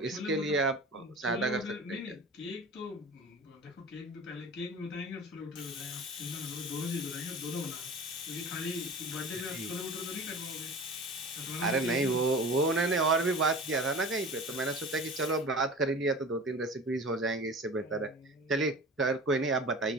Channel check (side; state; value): both; normal; correlation 0.37